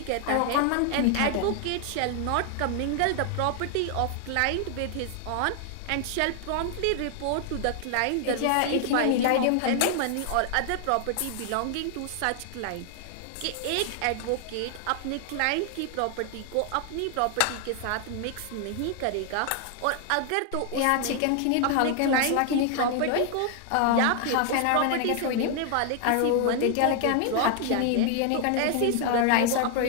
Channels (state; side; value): different; both; correlation 0.00